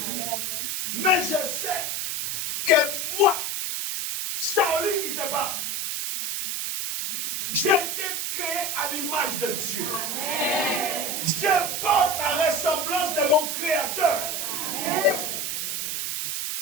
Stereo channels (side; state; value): right; noise; hiss, 2 dB below the sound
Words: Mais je sais que moi, Charlie qui te parle, j'ai été créé à l'image de Dieu. Je porte la ressemblance de mon Créateur.